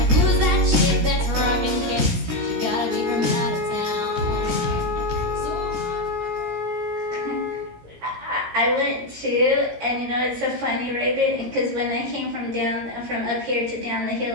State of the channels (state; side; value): late; left; 17 ms